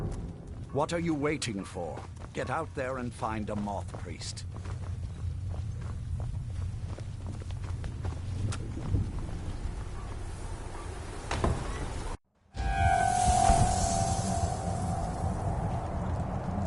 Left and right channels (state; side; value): identical; both; correlation 1.00